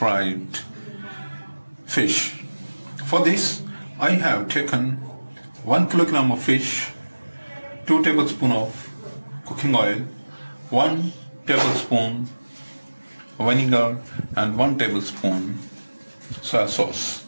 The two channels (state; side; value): inverted; both; correlation -1.00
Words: fish. For this I have taken 1 kilogram of fish, 2 tablespoons of cooking oil, 1 tablespoon vinegar and 1 tablespoon soy sauce.